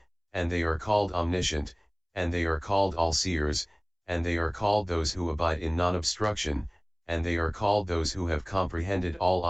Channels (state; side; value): identical; both; correlation 1.00